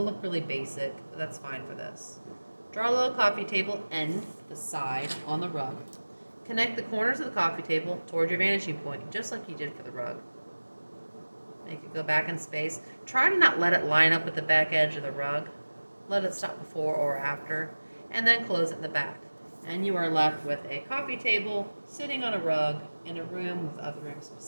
look really basic, but that's fine for this. Draw a little coffee table end, the side, on the rug. Connect the corners of the coffee table toward your vanishing point, just like you did for the rug. Make it go back in space. Try to not let it line up with the back edge of the rug. Let it stop before or after, and then close it in the back. And you are left with a coffee table sitting on a rug in a room with other rooms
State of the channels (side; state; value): both; inverted; correlation -1.00